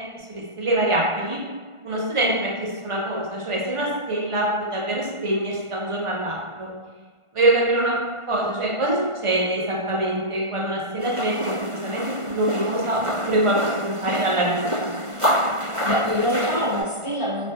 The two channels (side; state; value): left; late; 1.5 ms